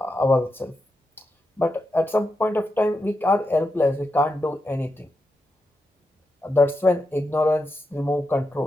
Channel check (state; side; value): normal; both; correlation 0.87